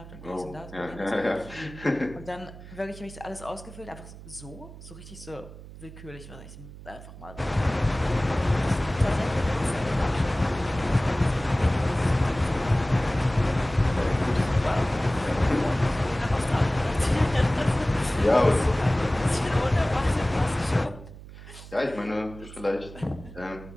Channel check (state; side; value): noise; right; hum, 16 dB below the sound